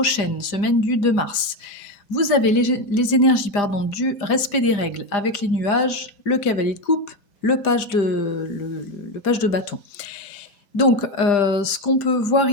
semaine du 2 mars. Vous avez les énergies du respect des règles avec les nuages, le cavalier de coupe, le page de bâton. Donc, ce qu'on peut voir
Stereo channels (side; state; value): right; late; 5.0 ms